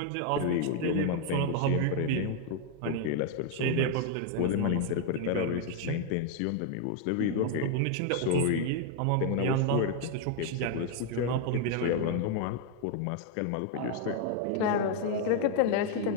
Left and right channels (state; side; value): different; both; correlation 0.01